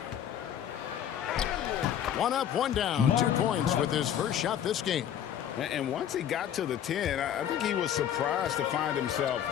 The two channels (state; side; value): quieter; right; 9.9 dB